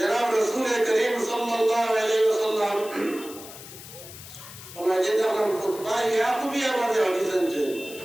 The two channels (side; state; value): left; noise; hiss, 15 dB below the sound